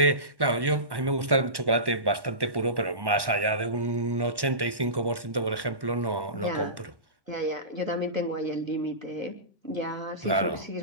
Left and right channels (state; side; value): late; left; 1.1 ms